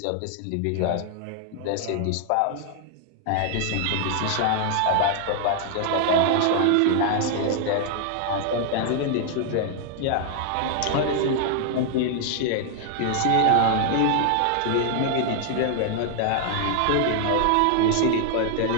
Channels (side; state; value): both; different; correlation 0.00